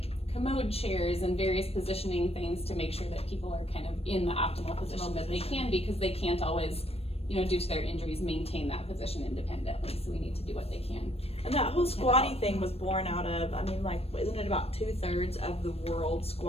commode chairs and various positioning things to make sure that people are kind of in the optimal position that they can, because they can't always, due to their injuries, maintain that position independently. So we need to do what they can. And that whole squatty thing was born out of, isn't it about 2/3 of the world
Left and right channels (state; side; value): late; right; 0.29 ms